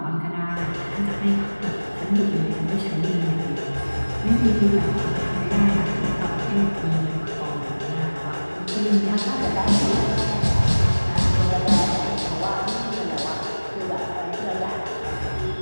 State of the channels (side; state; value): both; inverted; correlation -1.00